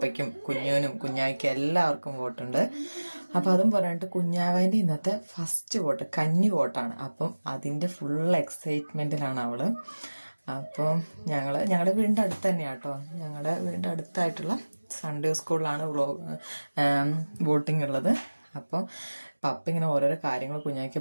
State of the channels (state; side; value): inverted; both; correlation -1.00